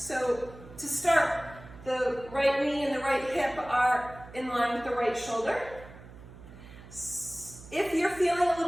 to start, the right knee and the right hip are in line with the right shoulder. If you're feeling a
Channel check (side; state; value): right; noise; hum, 18 dB below the sound